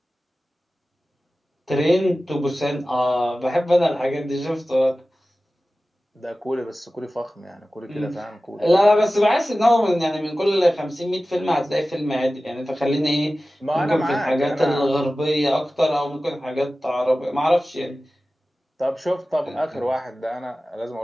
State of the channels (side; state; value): both; normal; correlation 0.96